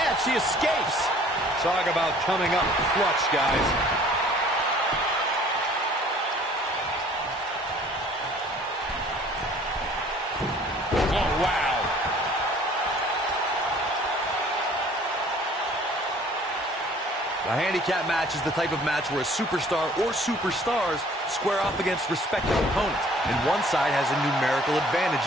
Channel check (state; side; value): normal; both; correlation 0.54